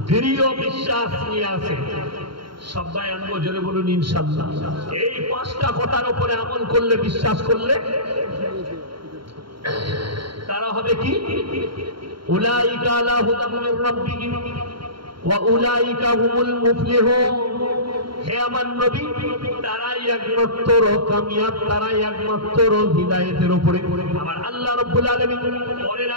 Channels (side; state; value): left; late; 0.73 ms